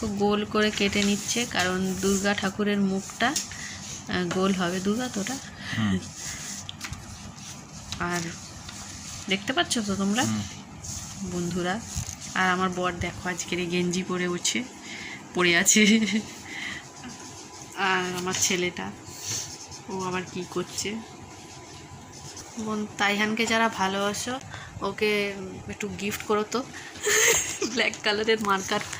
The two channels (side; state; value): both; identical; correlation 1.00